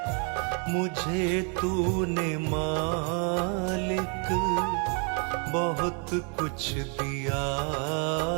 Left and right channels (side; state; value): left; quieter; 38.0 dB